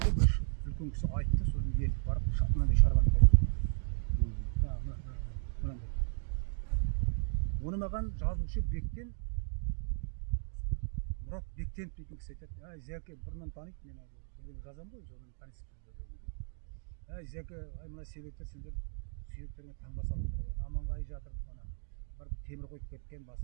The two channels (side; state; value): left; silent; 54 dB below the other